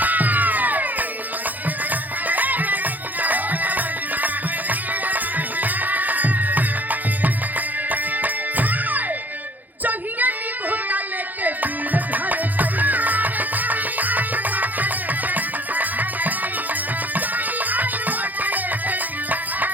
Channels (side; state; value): left; late; 0.083 ms